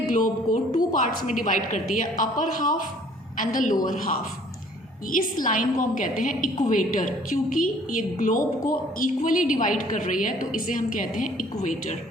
को 2 पार्ट्स में डिवाइड करती है, upper half and the lower half. इस लाइन को हम कहते हैं इक्वेटर, क्योंकि ये ग्लोब को इक्वली डिवाइड कर रही है तो इसे हम कहते हैं इक्वेटर.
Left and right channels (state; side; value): normal; both; correlation 0.56